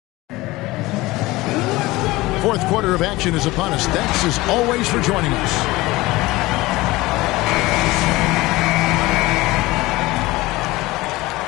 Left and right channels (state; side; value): quieter; right; 19.9 dB